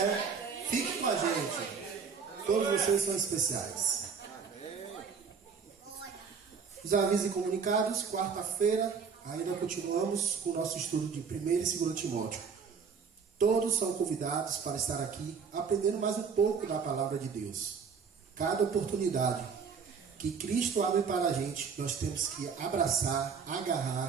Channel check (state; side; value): quieter; left; 5.9 dB